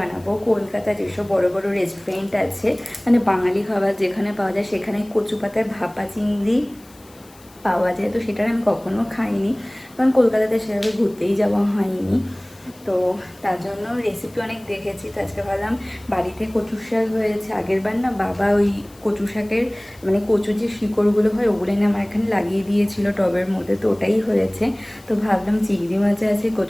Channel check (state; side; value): noise; left; hiss, 26 dB below the sound